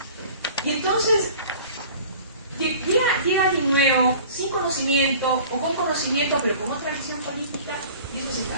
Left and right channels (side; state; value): both; inverted; correlation -0.44